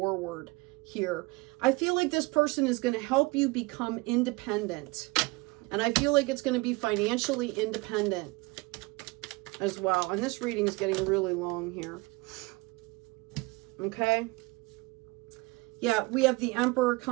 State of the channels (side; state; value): left; quieter; 24.2 dB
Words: here. I feel like this person is going to help you become independent. And I feel like it's going to be financially independent as well. And this reading is getting really long here. Okay. Yeah, we have the Emperor